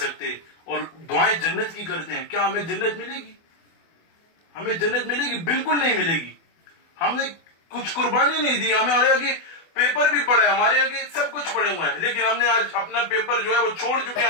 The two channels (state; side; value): late; right; 24 ms